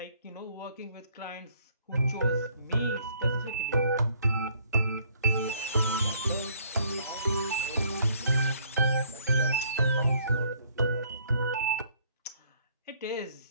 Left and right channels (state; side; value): inverted; both; correlation -0.63